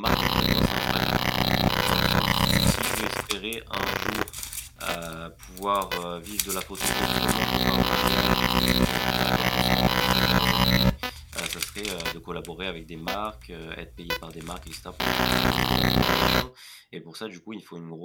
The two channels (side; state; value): both; identical; correlation 1.00